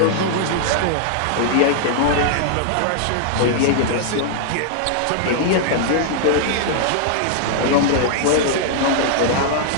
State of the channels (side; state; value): both; different; correlation -0.01